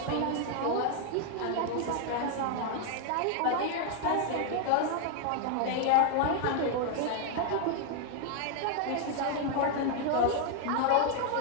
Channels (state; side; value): different; both; correlation 0.00